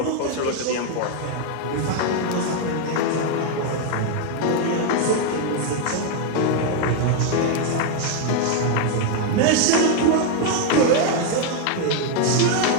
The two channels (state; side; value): different; both; correlation 0.01